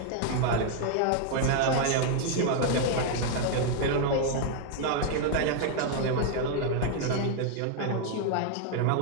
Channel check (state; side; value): different; both; correlation 0.00